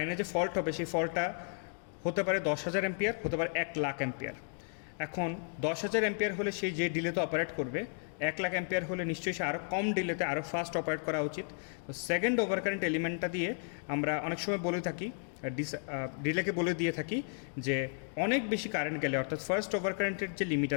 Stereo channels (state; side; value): silent; right; 55 dB below the other